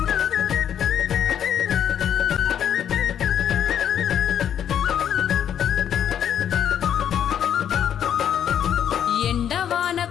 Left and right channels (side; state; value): right; quieter; 9.4 dB